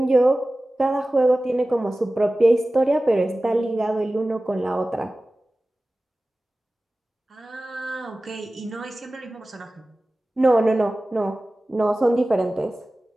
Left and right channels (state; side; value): normal; both; correlation 0.97